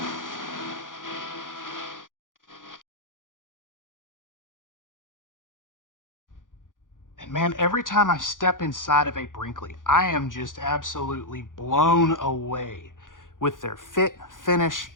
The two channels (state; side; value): late; right; 0.89 ms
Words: And man, every time I step inside of a Brinkley, I am just absolutely blown away with their fit, finish,